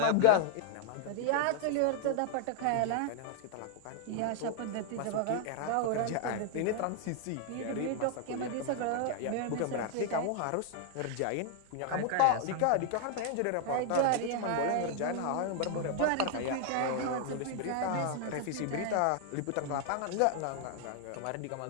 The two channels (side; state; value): both; different; correlation 0.00